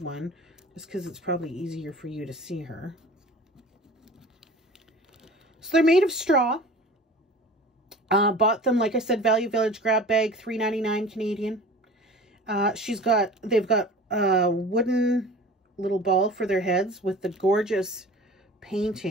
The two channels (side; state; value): both; normal; correlation 0.41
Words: one just because it's probably easier for you to see her. So they're made of straw. Bought them, like I said, Value Village grab bag, $3.99 Canadian. They've got a wooden little ball for their heads with the gorgeous